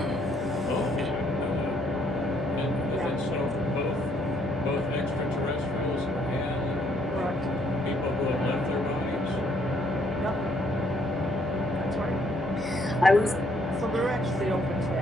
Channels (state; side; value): normal; both; correlation 0.68